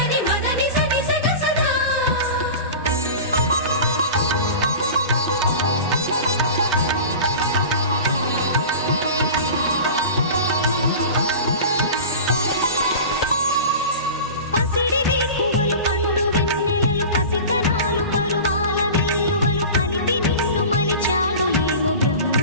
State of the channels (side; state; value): both; inverted; correlation -0.34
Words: మదని సని సగ సదా పసిడి వేకువలు పండు వెన్నెలలు పసితనాలు పరువాల వెల్లువలు కలిపి నిన్ను మలిచాడు ఏమో బ్రహ్మ